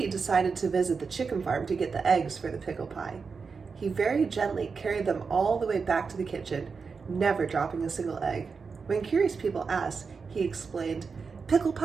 decided to visit the chicken farm to get the eggs for the pickle pie. He very gently carried them all the way back to the kitchen, never dropping a single egg. When curious people asked, he explained, "Pickle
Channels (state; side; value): quieter; left; 5.1 dB